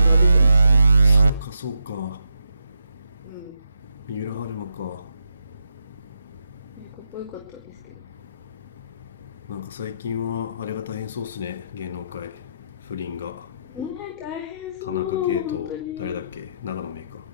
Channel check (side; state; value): both; inverted; correlation -0.83